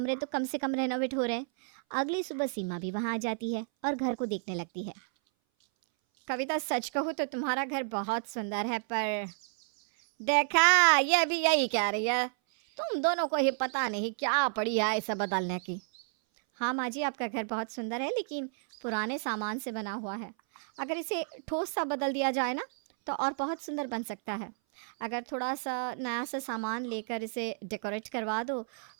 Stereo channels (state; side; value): silent; left; 57 dB below the other